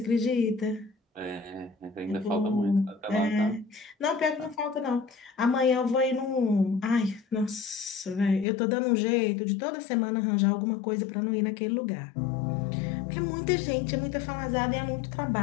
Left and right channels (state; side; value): drops out; right; at 8.5 s